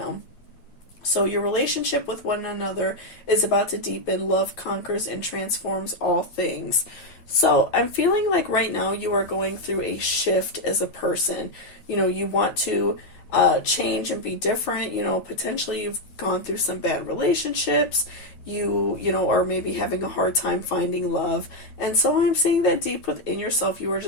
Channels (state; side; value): late; right; 9.2 ms